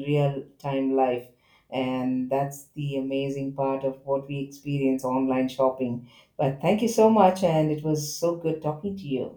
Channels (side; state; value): both; identical; correlation 1.00